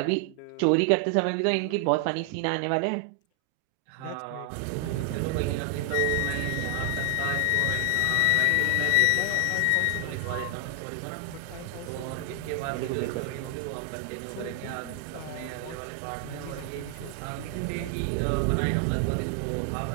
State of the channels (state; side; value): different; both; correlation 0.00